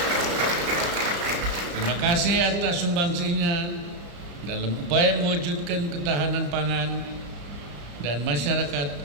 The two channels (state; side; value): late; left; 34 ms